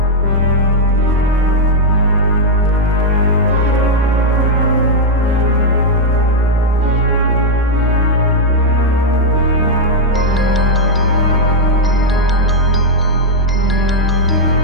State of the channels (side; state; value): both; normal; correlation -0.02